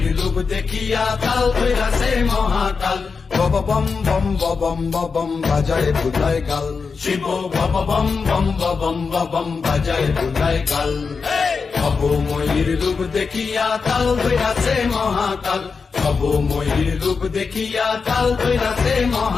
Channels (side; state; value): right; quieter; 5.0 dB